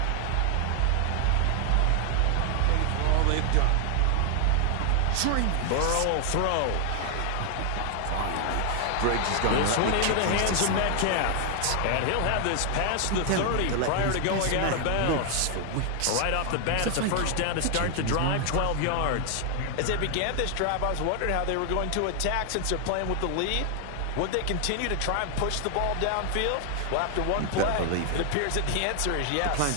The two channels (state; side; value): different; both; correlation 0.00